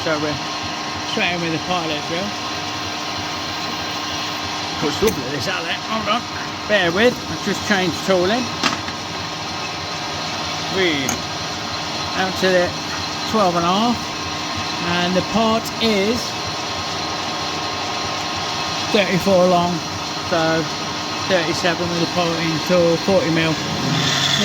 so we're straight in with the pilot drill. Looks lovely this outlet. Hold on. Bear with, I've just changed tooling. Read. Out to the 12.5, and the part is 34 long, so 37 with the piloting tool, 40mm.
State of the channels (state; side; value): identical; both; correlation 1.00